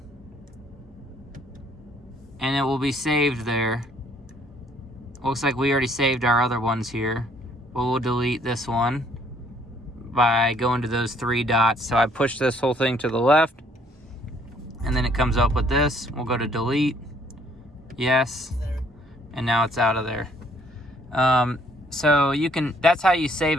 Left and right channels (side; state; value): both; normal; correlation 0.63